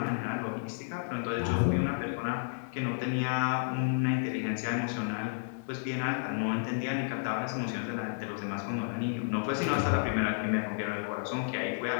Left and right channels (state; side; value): silent; right; 57 dB below the other